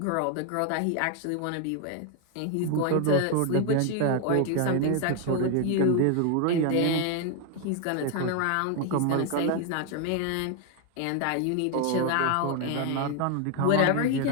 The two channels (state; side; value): different; both; correlation 0.01